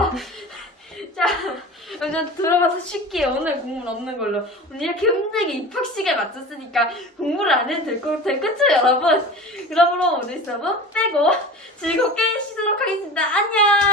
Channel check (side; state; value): both; normal; correlation 0.35